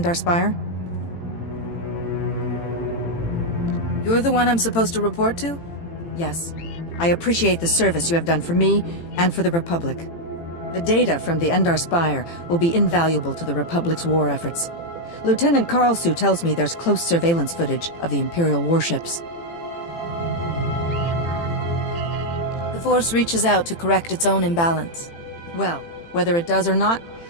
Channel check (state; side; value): late; right; 18 ms